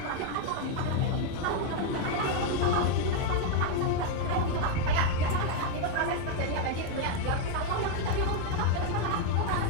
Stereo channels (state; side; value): different; both; correlation 0.01